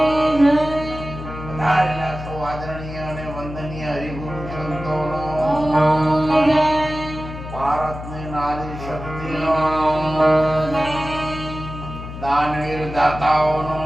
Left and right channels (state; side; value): noise; left; hum, 10 dB below the sound